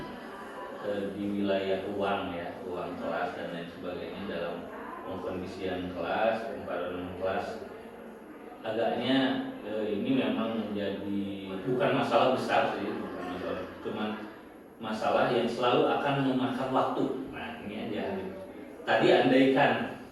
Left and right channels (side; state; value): both; identical; correlation 1.00